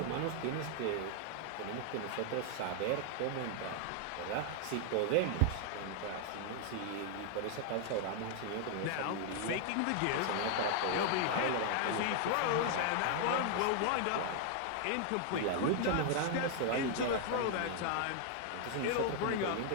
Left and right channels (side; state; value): both; different; correlation 0.00